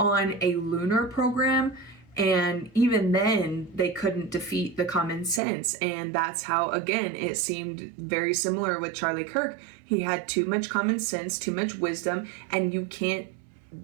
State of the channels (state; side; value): drops out; left; at 5.4 s